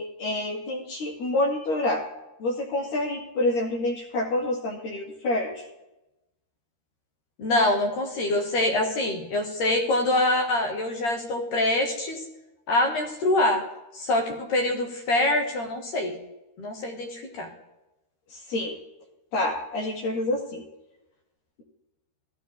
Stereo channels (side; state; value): right; late; 13 ms